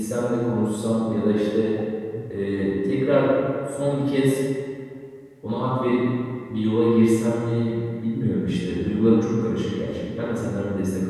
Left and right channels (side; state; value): both; identical; correlation 1.00